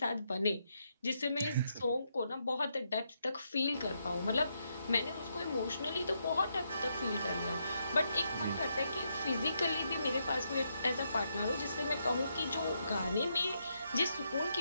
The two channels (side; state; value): both; inverted; correlation -0.79